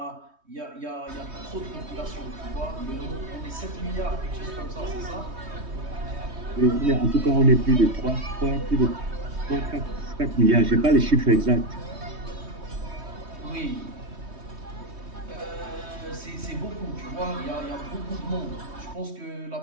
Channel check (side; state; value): left; late; 3.2 ms